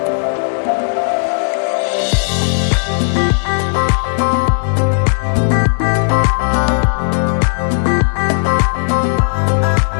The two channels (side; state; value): right; silent; digital silence